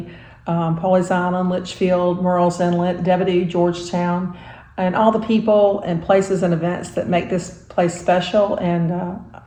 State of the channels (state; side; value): identical; both; correlation 1.00